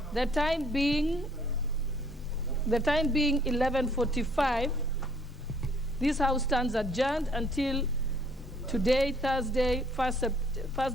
the time being 11:45, this House stands adjourned until today, Thursday,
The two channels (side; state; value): both; normal; correlation 0.62